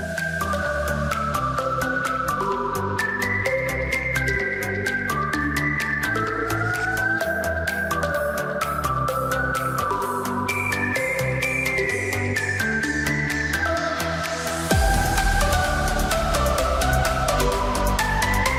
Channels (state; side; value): identical; both; correlation 1.00